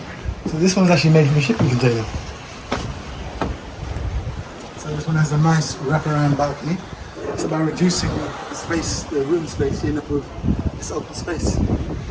so this one's actually made from a shipping container. So this one has a nice wraparound balcony. It's about reducing the space, the room space, you end up with this open space.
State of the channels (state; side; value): identical; both; correlation 1.00